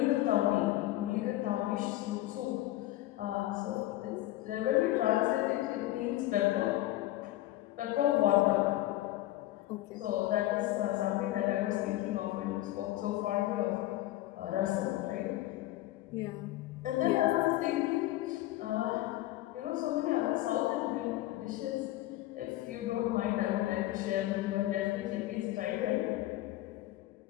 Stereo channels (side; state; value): right; quieter; 15.9 dB